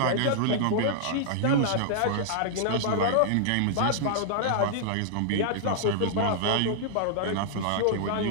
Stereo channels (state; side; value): different; both; correlation -0.01